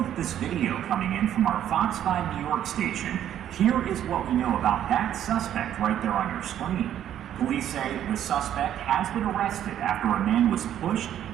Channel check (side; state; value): left; quieter; 10.8 dB